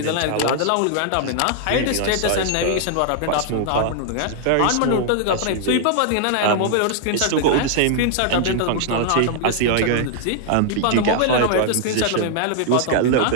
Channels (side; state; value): both; different; correlation -0.01